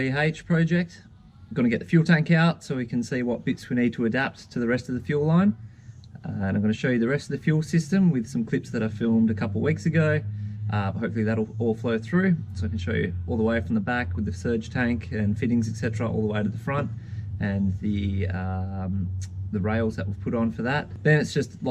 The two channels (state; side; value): identical; both; correlation 1.00